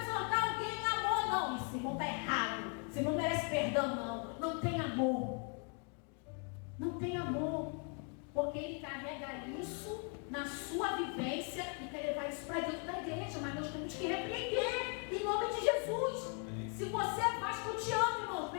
exortar alguém em amor. Não, esse irmão está errado, esse irmão não merece perdão, não tem amor. Não tem amor, porque ele carrega isso na sua vivência e quer levar isso para dentro da igreja, mas nós temos que repreender em nome de Jesus. Se você é Vasco, eu te amo, irmão,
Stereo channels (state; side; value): quieter; right; 39.0 dB